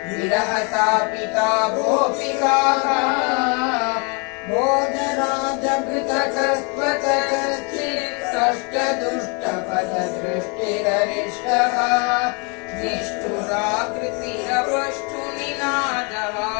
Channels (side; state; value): right; quieter; 33.7 dB